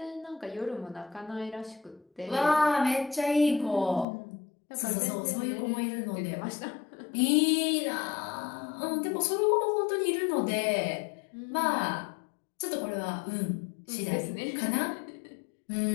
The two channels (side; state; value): right; drops out; at 4.0 s